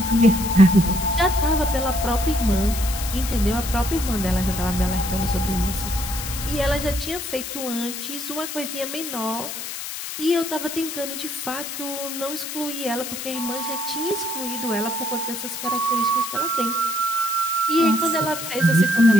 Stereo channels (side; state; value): left; noise; hiss, 7 dB below the sound